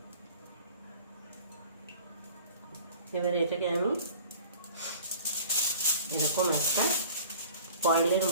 আমি এরকম একটা ফয়েলের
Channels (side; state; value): both; inverted; correlation -0.46